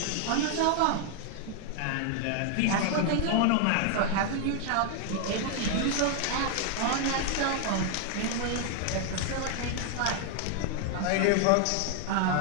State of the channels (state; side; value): different; both; correlation 0.00